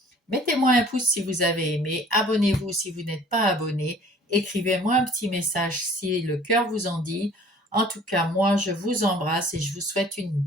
Mettez-moi un pouce si vous avez aimé, abonnez-vous si vous n'êtes pas abonné, écrivez-moi un petit message si le cœur vous en dit. En tout cas, moi, je vous embrasse et je vous souhaite une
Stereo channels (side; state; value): both; normal; correlation 0.51